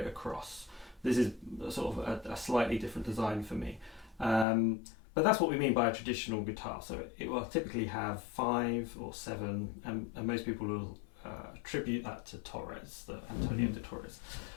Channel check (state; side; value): drops out; right; at 4.5 s